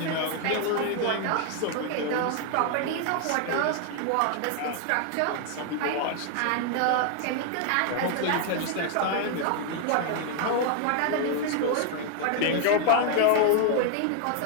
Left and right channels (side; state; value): both; different; correlation 0.00